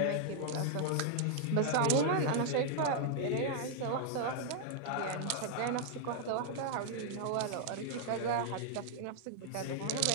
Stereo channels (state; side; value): different; both; correlation -0.01